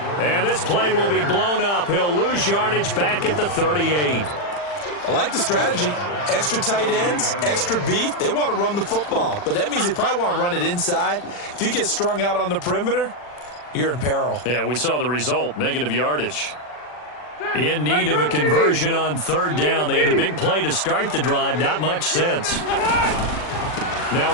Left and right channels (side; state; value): right; late; 40 ms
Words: And this play will be blown up. He'll lose yardage back at the 38. I like the strategy. Extra tight ends, extra beef. They want to run the football, but that means they probably want to run it inside. If you get strung out on the perimeter, you're in peril. Yeah, we saw the result, negative yardage. In need of a conversion on third down. They had the big play to start the drive. Not much sense. Now